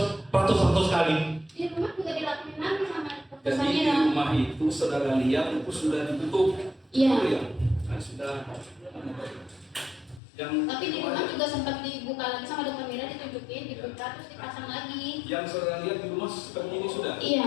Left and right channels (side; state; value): right; drops out; at 10.2 s